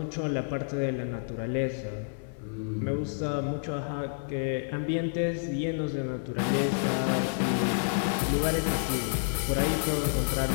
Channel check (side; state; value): right; silent; 58 dB below the other